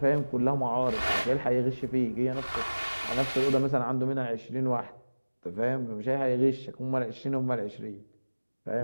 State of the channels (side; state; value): both; inverted; correlation -1.00